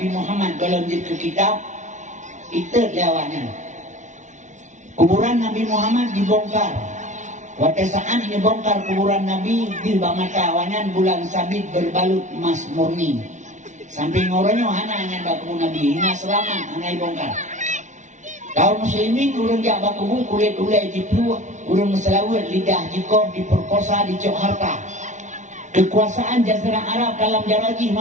Muhammad dalam jilid kitab itu lewatnya. Kuburan Nabi Muhammad dibongkar. Waktu saat ini bongkar kuburan Nabi di mata awanyan bulan sabit berbalut emas murni. Sampai ngorongnya hanya baku Nabi, hina selamat hanya bongkar. Kaum muslimin urang jak baku kulit ulai jiplu, urang selawat lidah jikoh diperkosa dicok harta. Kekuasaan Jazirah Arab dalam jarajih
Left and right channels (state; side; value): late; left; 0.35 ms